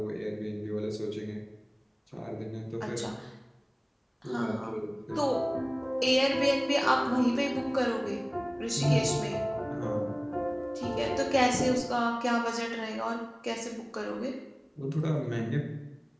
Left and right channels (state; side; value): identical; both; correlation 1.00